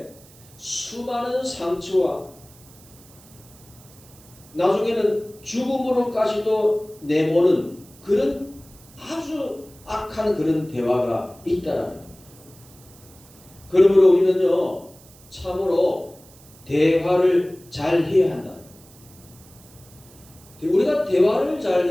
수많은 상처와 나중에는 죽음으로까지도 내모는 그런 아주 악한 그런 대화가 있다라는 겁니다. 그러므로 우리는요 참으로 대화를 잘 해야 한다. 우리가 대화를 잘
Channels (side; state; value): right; noise; hiss, 24 dB below the sound